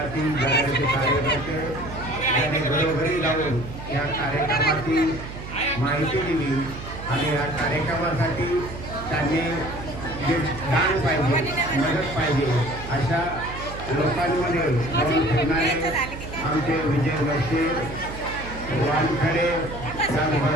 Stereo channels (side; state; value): right; noise; hum, 11 dB below the sound